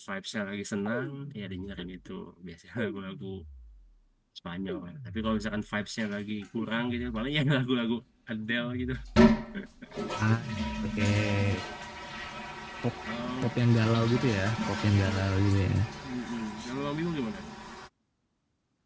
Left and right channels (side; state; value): both; identical; correlation 1.00